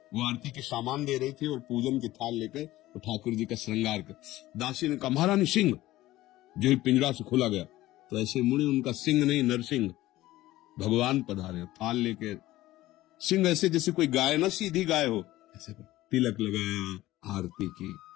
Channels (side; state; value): right; quieter; 16.4 dB